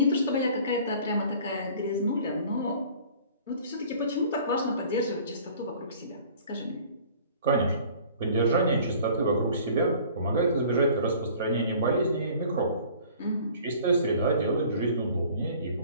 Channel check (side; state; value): both; inverted; correlation -0.50